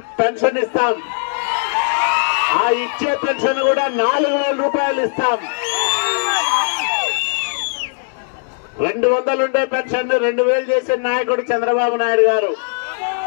పెన్షన్ ఇస్తాం. ఆ ఇచ్చే పెన్షన్ కూడా 4,000 రూపాయలు ఇస్తాం. 200 ఉండే పెన్షన్ 2,000 చేసిన నాయకుడు చంద్రబాబు నాయుడు గారు.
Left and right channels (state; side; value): silent; right; digital silence